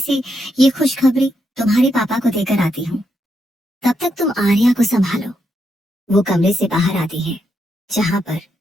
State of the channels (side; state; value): both; normal; correlation 0.81